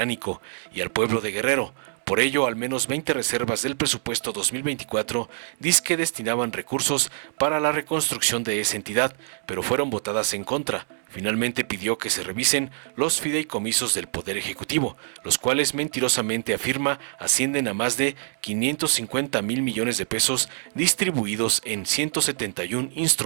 y al pueblo de Guerrero. Por ello, al menos 20 reservas del presupuesto 2024 dizque destinaban recursos para la reconstrucción de esa entidad, pero fueron votadas en contra. Finalmente pidió que se revisen los fideicomisos del Poder Ejecutivo, los cuales mentirosamente afirma ascienden a más de 550,000 millones de pesos distribuidos en 171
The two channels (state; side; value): silent; left; 62 dB below the other